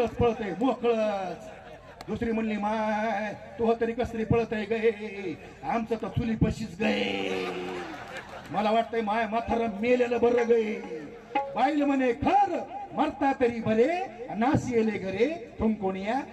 पळत आहे मोकळच. दुसरी म्हणली माय तो तरी कसरी पळत आहे गे, आमचं तर चुली पशीच गे. मला वाटतंय माय म्हातारा मेलेलं बरं गे. बाईल म्हणे खर मरता तरी बरे नासी येले घरे तुम कोणिया.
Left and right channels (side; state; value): both; identical; correlation 1.00